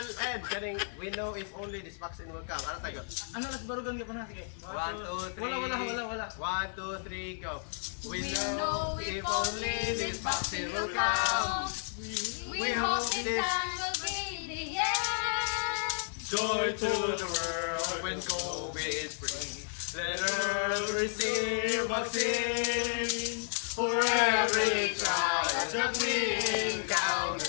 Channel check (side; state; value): right; silent; 56 dB below the other